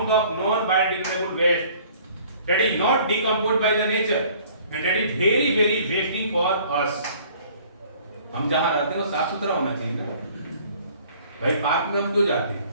of non biodegradable waste that is not decomposed by the nature and that is very very wasting for us. हम जहां रहते हैं वो साफ सुथरा होना चाहिए ना भाई। पार्क में हम क्यों जाते हैं?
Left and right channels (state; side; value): inverted; both; correlation -0.54